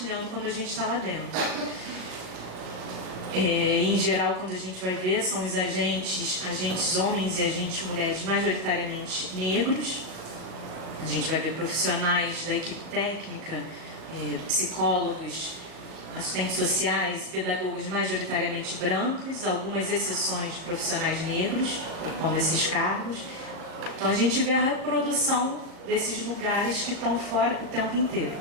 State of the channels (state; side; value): late; left; 38 ms